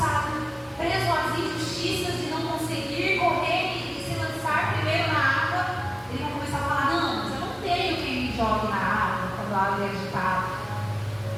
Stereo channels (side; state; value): both; identical; correlation 1.00